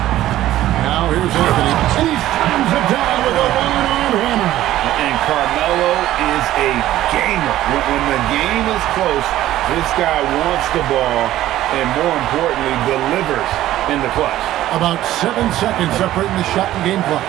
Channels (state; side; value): quieter; left; 14.1 dB